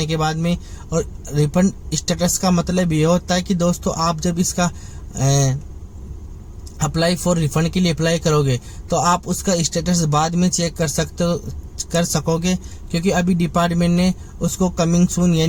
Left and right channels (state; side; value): identical; both; correlation 1.00